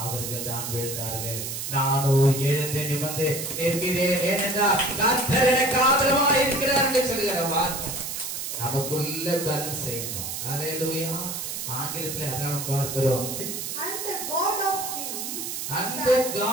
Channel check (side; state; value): right; noise; hiss, 5 dB below the sound